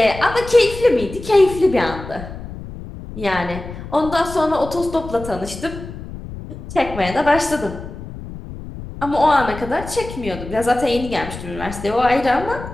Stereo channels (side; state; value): left; noise; rumble, 12 dB below the sound